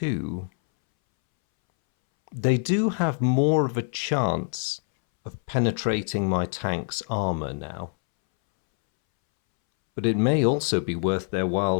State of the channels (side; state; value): right; silent; 62 dB below the other